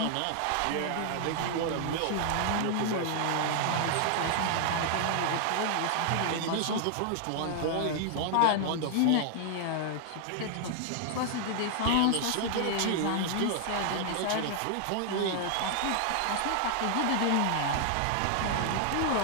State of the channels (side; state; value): both; different; correlation 0.00